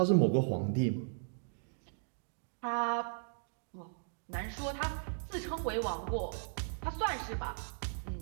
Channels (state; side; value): silent; left; digital silence